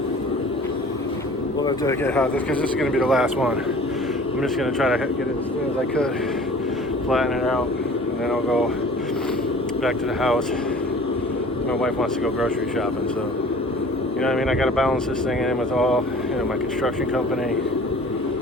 Well, let's get hot, because this is going to be the last one. I'm just going to try to get it as soon as I could, flatten it out, and then I'll go back to the house. My wife wants to go grocery shopping, so, you know what I mean? I got to balance this thing in with all, you know, my construction company,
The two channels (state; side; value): normal; both; correlation 0.46